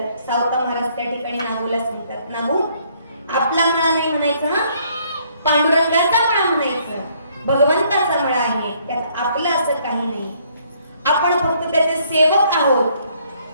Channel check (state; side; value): inverted; both; correlation -0.65